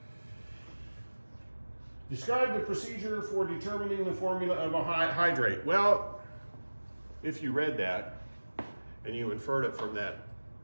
Describe the procedure for determining the formula of a hydrate. Well, if you read that, and you inferred it from that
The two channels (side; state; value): both; inverted; correlation -1.00